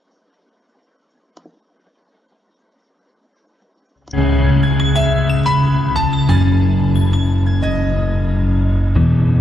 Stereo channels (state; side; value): normal; both; correlation 0.84